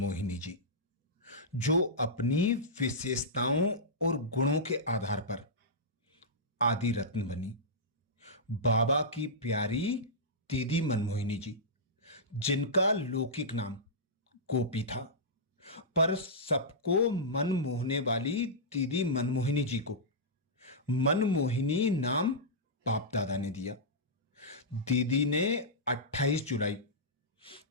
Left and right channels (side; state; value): both; normal; correlation -0.14